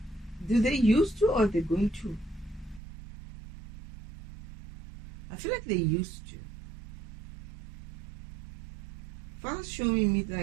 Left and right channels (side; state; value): left; drops out; at 2.8 s